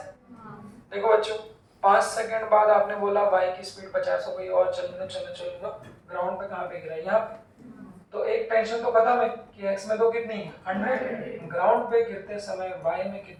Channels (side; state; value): both; identical; correlation 1.00